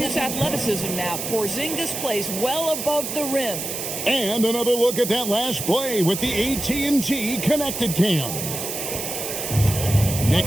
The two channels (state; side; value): noise; right; hiss, 5 dB below the sound